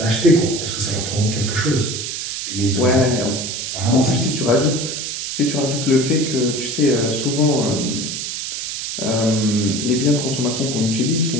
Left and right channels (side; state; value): right; noise; hiss, 5 dB below the sound